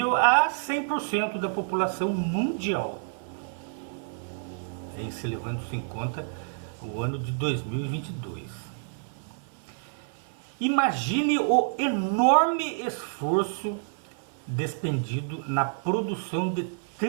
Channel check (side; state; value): left; silent; 56 dB below the other